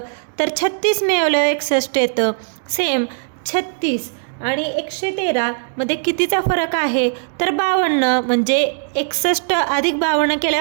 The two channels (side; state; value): left; silent; digital silence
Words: तर 36 मिळवल्यावर 61 येतं। सेम 36 आणि 113 मध्ये कितीचा फरक आहे? तर 52, म्हणजे 61 अधिक 52